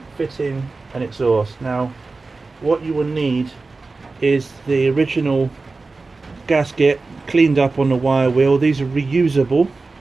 fitting an exhaust. Now, what you will need is the original gasket cleaned up on the wire wheel. These are reusable,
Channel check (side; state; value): left; quieter; 3.8 dB